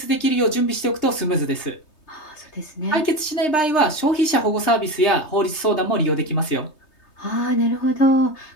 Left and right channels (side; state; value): right; late; 3.2 ms